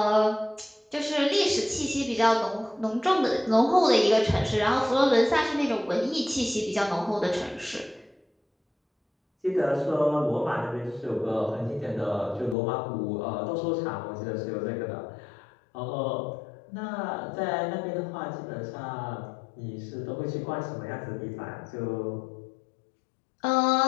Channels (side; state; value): right; drops out; at 12.6 s